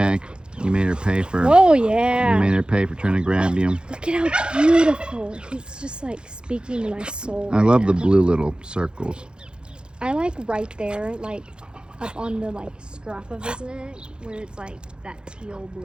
You made her pay for. Oh yeah. You made her pay for trying to grab you. Look at how beautiful. He's just like speaking to my soul. I love the blue little circles. I like right there, like up on the like scruff of his neck, where it's like that teal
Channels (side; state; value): left; late; 0.049 ms